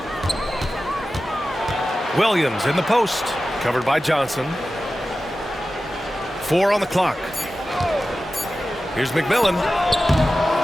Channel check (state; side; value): normal; both; correlation 0.94